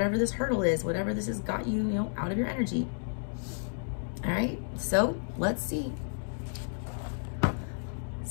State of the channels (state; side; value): silent; right; digital silence